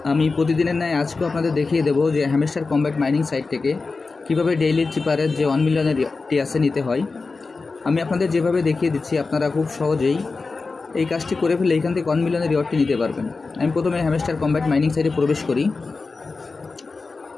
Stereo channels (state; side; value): quieter; right; 4.0 dB